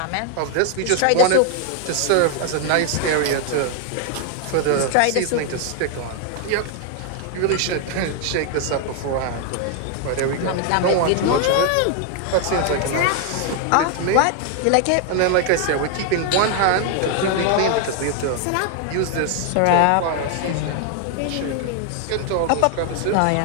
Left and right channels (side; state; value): both; different; correlation 0.00